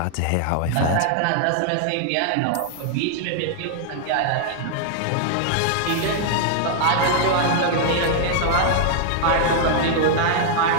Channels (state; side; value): different; both; correlation 0.00